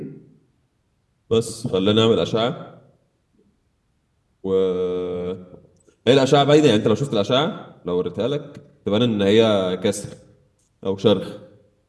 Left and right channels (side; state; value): both; identical; correlation 1.00